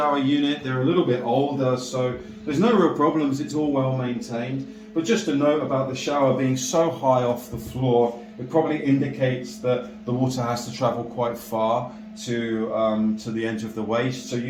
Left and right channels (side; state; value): both; identical; correlation 1.00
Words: unit, they're a little bit older, so there's no real problems, it's all well maintained. But just a note about the shower being so high off the floor, it probably indicates that the water has to travel quite far to the edge of the waste. So